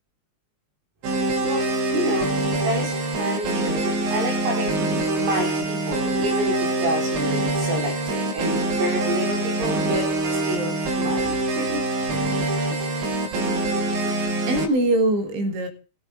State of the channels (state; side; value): late; left; 19 ms